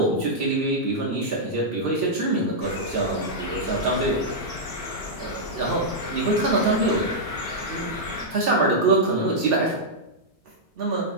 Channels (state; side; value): normal; both; correlation -0.07